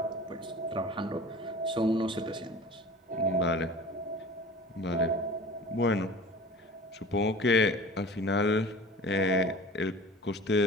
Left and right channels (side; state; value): both; normal; correlation 0.40